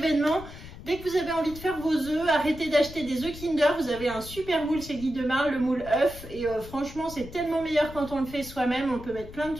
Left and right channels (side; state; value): left; noise; rumble, 15 dB below the sound